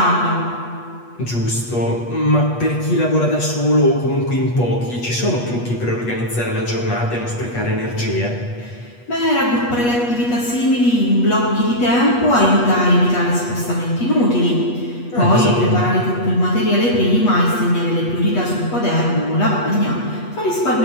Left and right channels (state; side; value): late; right; 8.3 ms